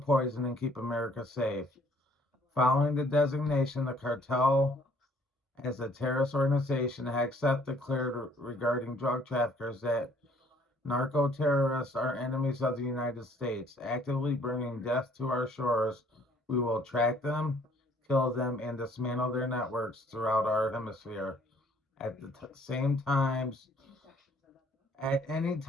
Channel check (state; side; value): normal; both; correlation 0.61